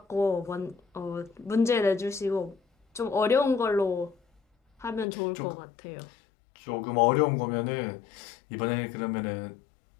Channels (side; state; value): right; drops out; at 5.1 s